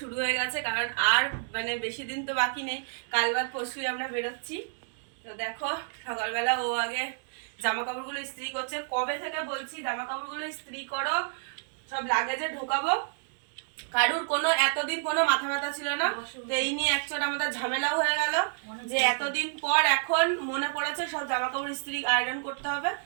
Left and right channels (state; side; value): silent; left; digital silence